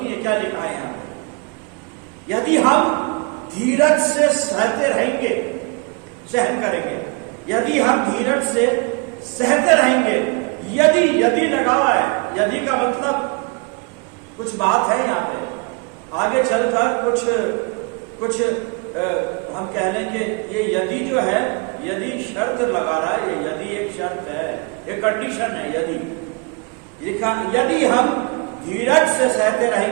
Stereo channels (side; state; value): left; quieter; 31.0 dB